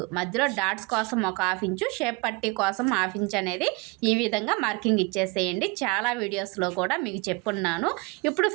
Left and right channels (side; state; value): left; quieter; 27.3 dB